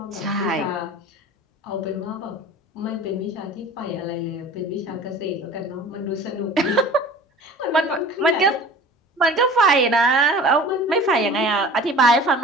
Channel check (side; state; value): both; normal; correlation 0.42